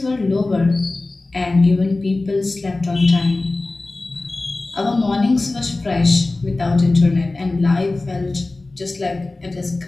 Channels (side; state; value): right; quieter; 3.1 dB